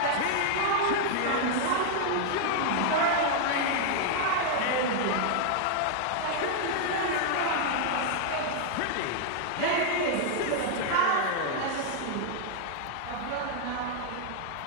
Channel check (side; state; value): both; different; correlation 0.00